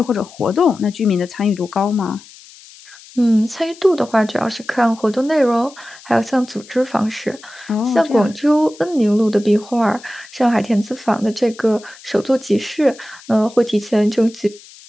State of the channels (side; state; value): left; noise; hiss, 21 dB below the sound